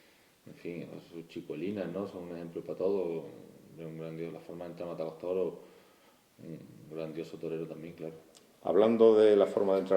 en fin, sus chicuelinas, ¿no? Son un ejemplo para todos. Un grandioso, la forma de entrar a matar a los toros, un grandioso torero también, claro. Hablando de la forma de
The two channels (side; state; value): both; identical; correlation 1.00